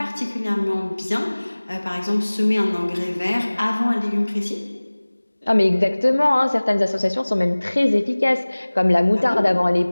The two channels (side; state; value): both; inverted; correlation -1.00